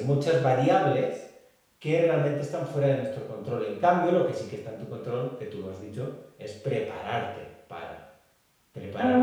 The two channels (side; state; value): both; identical; correlation 1.00